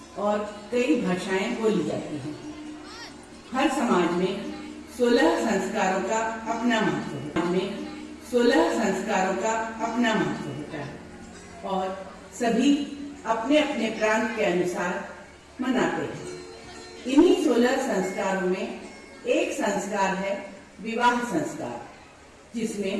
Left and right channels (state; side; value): identical; both; correlation 1.00